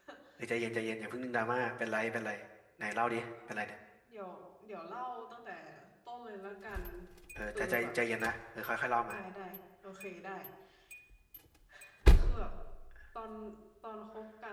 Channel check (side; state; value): both; identical; correlation 1.00